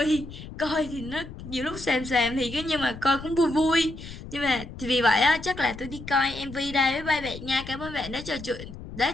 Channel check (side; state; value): left; noise; rumble, 13 dB below the sound